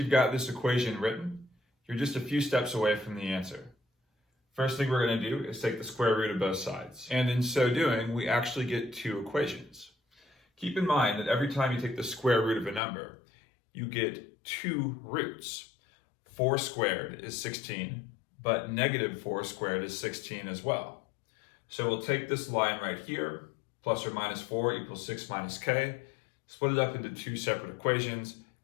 got this equation written, you're just a few steps away from the answer. First thing we're going to do is take the square root of both sides. And in so doing, we actually get two equations. Keep in mind that every time you take the square root of a number, you get two roots. 4 squared is 16, but negative 4 squared is 16 as well. So we'll take this line right here, plus or minus 4 equals 6 minus k, split it up into two separate equations,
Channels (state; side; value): drops out; right; at 12.8 s